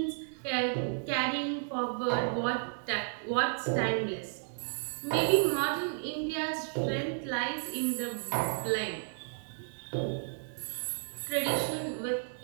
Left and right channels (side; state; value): left; silent; digital silence